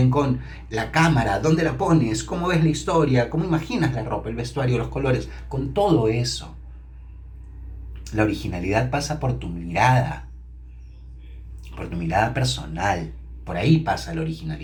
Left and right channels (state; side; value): identical; both; correlation 1.00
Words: con la cámara, dónde la pones, cómo ves la historia, cómo imaginas la ropa, el vestuario, los colores, con todo eso. La originalidad pasa por tu mirada personal. Por ahí pasa la